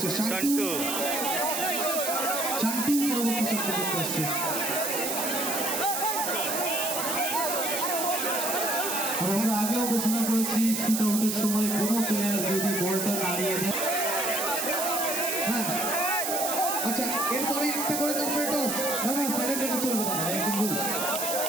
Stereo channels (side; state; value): right; noise; hiss, 2 dB below the sound